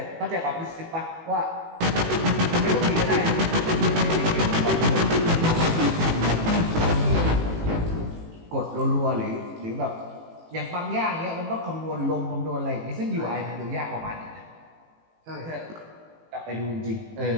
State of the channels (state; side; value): late; left; 18 ms